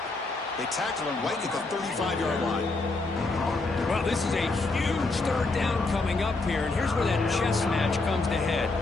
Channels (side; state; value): right; quieter; 3.4 dB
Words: They tackle him right at the 35-yard line. Well, this is a huge 3rd down coming up here, and here's where that chess match comes to head.